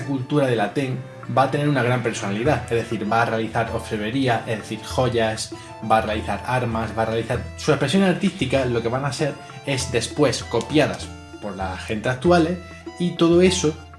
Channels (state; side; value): identical; both; correlation 1.00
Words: cultura de Latén va a tener una gran personalidad, es decir, va a realizar orfebrería, es decir, joyas, va a realizar armas, va a realizar... Sus expresiones artísticas lo que van a ser es después copiadas por la gente actual y todo eso,